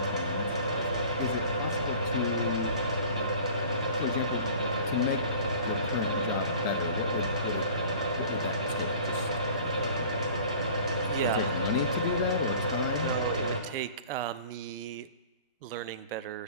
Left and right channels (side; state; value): both; inverted; correlation -0.45